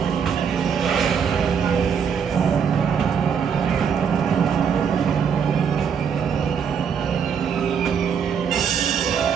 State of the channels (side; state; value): left; quieter; 7.1 dB